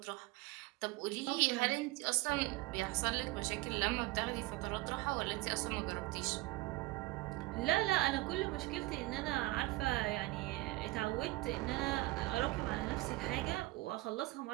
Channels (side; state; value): left; quieter; 20.1 dB